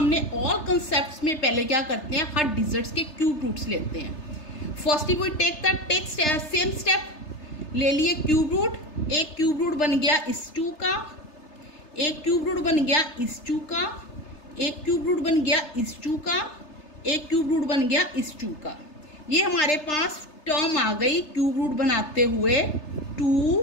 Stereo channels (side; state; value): right; late; 3.3 ms